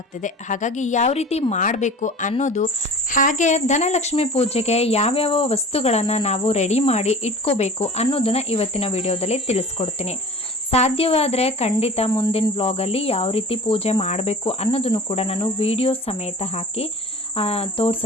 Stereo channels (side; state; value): both; normal; correlation 0.40